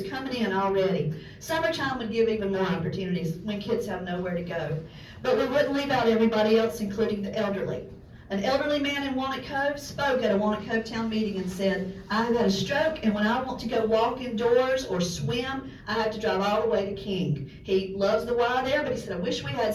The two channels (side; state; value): both; identical; correlation 1.00